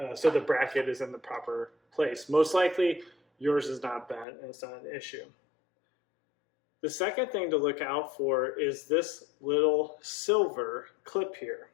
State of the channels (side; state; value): right; drops out; at 4.2 s